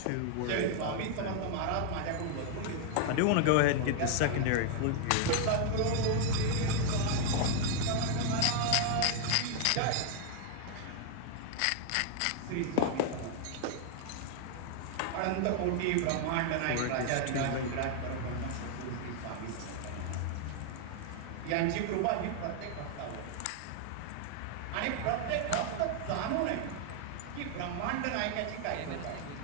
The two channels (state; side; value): different; both; correlation 0.00